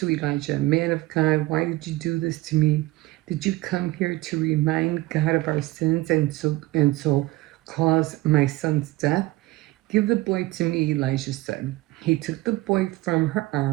Elijah, man of God, why did you do this to me? Did you come here to remind God of our sins and so cause my son's death? Give the boy to me, Elijah said. He took the boy from her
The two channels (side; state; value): left; quieter; 19.0 dB